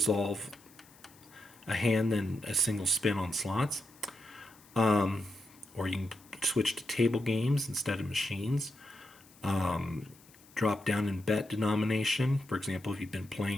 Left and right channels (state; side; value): noise; left; hiss, 26 dB below the sound